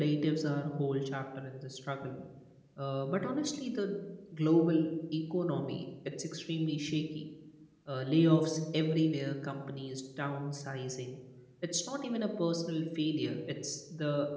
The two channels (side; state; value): both; identical; correlation 1.00